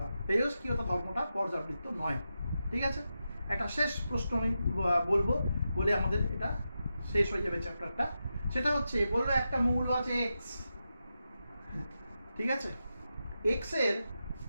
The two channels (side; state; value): both; inverted; correlation -0.89